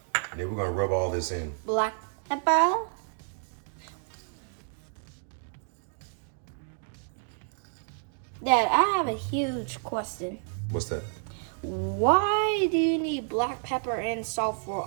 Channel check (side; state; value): left; silent; 58 dB below the other